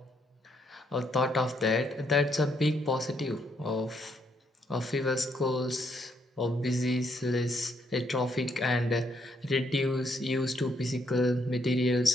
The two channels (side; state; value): both; normal; correlation 0.74